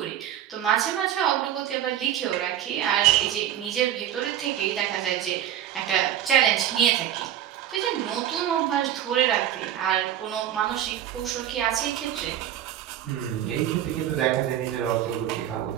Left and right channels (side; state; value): left; quieter; 11.2 dB